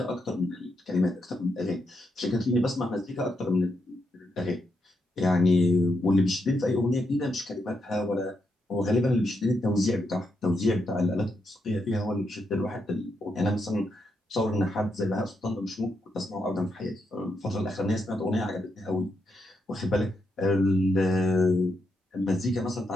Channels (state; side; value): normal; both; correlation 0.81